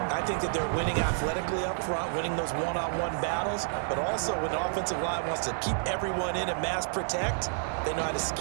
I think that they're winning athletically up front, winning those one-on-one battles, but also when the offensive line wants to keep everyone in and mass protect, they know how to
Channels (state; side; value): silent; left; digital silence